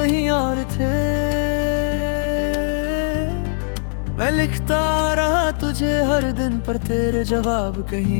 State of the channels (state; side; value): silent; right; 65 dB below the other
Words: और थे। मैं लिखता रहा तुझे हर दिन पर तेरे जवाब